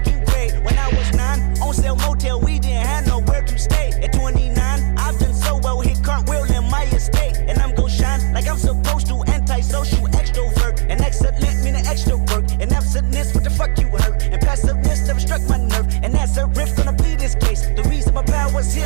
grade. When I was 9, on sale motel, we didn't have nowhere to stay. At 29, I've done so well, hit cartwheel in my estate. And I'm gon' shine like I'm supposed to, antisocial extrovert. And excellent meaning extra work. And absentness, what the fuck you hurt? And passiveness never struck my nerve. And that's a riff gonna be this case. The reason my power's here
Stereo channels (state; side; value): silent; left; 66 dB below the other